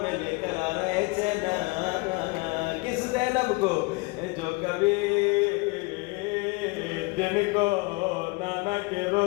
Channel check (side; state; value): right; quieter; 26.5 dB